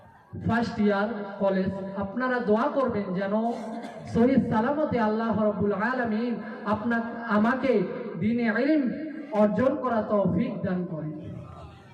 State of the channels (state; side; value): identical; both; correlation 1.00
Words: ফার্স্ট ইয়ার কলেজ। আপনারা দোয়া করবেন যেন সহি সালামতে আল্লাহ রাব্বুল আলামিন আমাকে দ্বীনে ইলম অর্জন করা তৌফিক দান করেন।